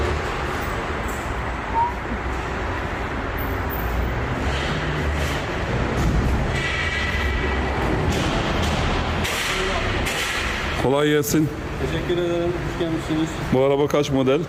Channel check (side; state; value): both; identical; correlation 1.00